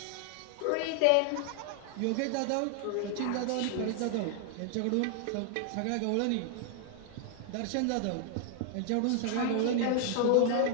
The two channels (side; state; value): both; different; correlation 0.00